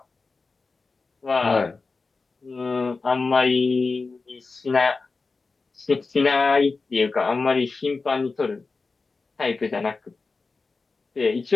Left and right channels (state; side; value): quieter; right; 4.1 dB